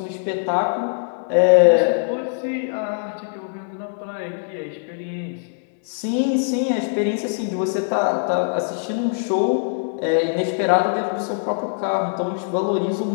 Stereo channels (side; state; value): right; silent; 62 dB below the other